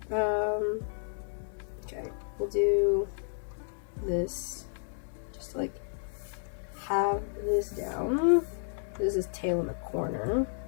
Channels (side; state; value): right; silent; digital silence